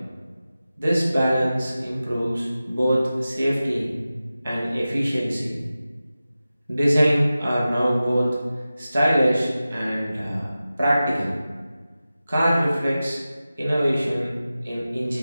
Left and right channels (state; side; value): inverted; both; correlation -0.95